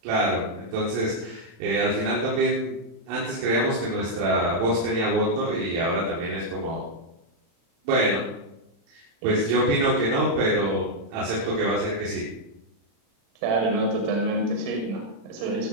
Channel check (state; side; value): late; left; 35 ms